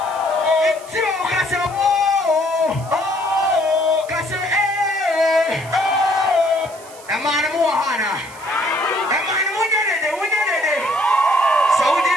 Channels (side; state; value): right; noise; hiss, 20 dB below the sound